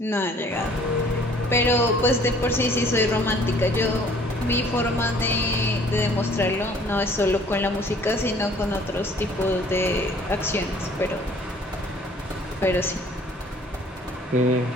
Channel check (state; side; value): normal; both; correlation 0.55